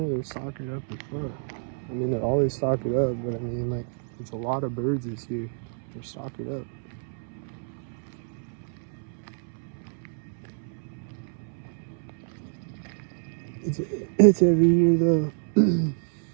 they're stalkered up as fuck. I mean, they're always stalkered up, but I mean, like, it's a lot of birds this year. They're stalkered up. It's every year though.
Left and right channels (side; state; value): left; silent; 59 dB below the other